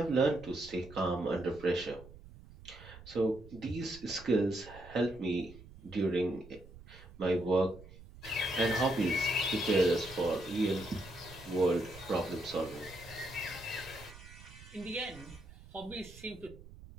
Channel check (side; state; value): right; noise; rumble, 18 dB below the sound